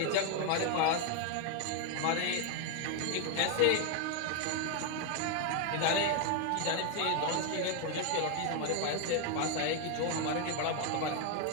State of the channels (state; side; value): different; both; correlation 0.01